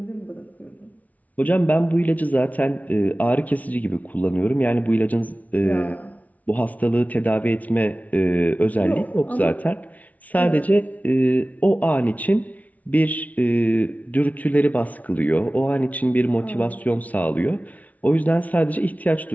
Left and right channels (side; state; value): right; late; 0.072 ms